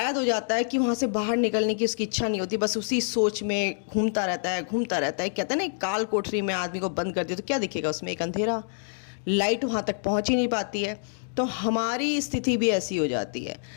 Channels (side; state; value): right; silent; digital silence